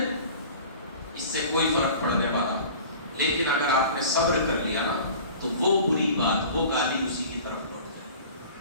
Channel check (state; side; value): inverted; both; correlation -0.42